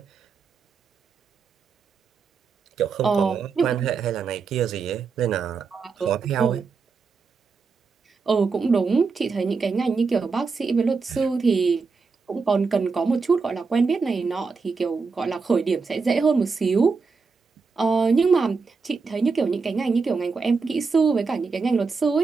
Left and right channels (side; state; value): left; quieter; 4.8 dB